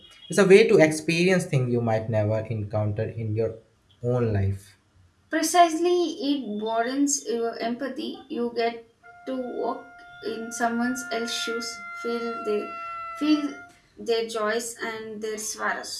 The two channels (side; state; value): both; identical; correlation 1.00